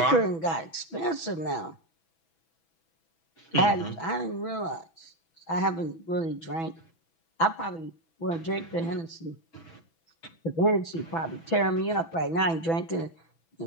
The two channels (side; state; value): right; late; 6.1 ms